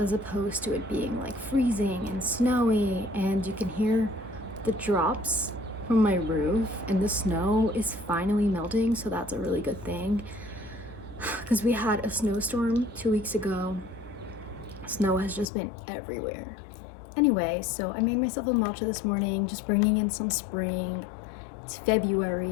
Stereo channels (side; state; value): right; drops out; at 15.5 s